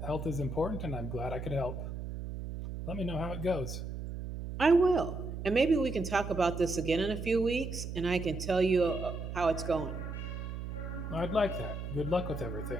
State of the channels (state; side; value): noise; right; hum, 7 dB below the sound